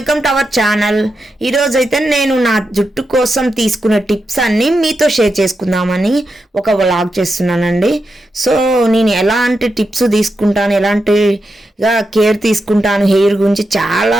to our channel. ఈరోజు అయితే నేను నా జుట్టు కోసం తీసుకునే టిప్స్ అన్నీ మీతో షేర్ చేసుకుందామని ఒక వ్లాగ్ చేస్తున్నానండి. సో నేను ఎలాంటి టిప్స్ తీసుకుంటాను, ఎలాంటిగా కేర్ తీసుకుంటాను హెయిర్ గురించి, చాలా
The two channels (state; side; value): normal; both; correlation 0.87